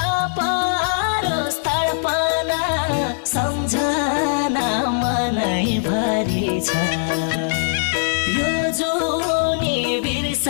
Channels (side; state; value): right; silent; digital silence